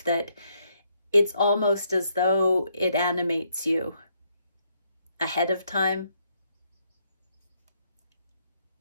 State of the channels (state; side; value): inverted; both; correlation -0.74